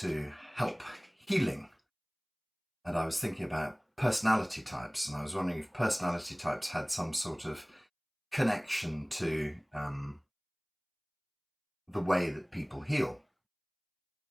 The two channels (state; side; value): identical; both; correlation 1.00